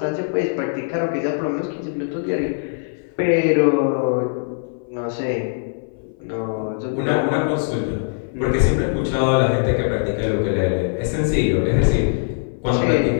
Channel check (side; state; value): right; silent; 58 dB below the other